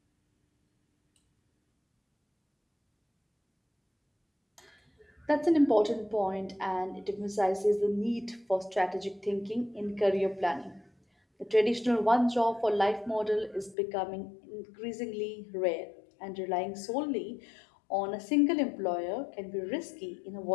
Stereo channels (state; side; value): drops out; right; at 13.8 s